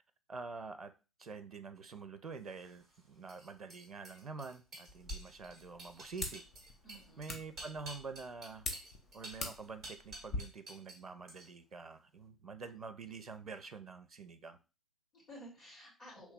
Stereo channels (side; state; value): both; normal; correlation 0.43